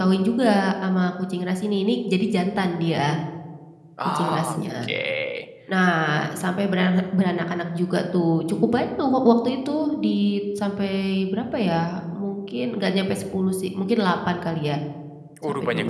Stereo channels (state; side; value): identical; both; correlation 1.00